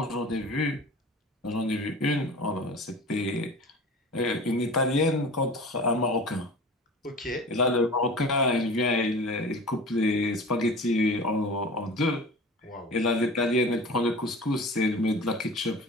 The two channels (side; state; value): both; normal; correlation 0.38